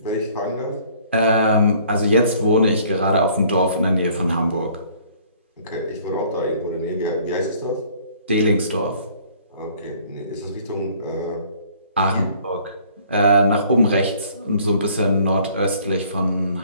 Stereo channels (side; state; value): both; inverted; correlation -0.57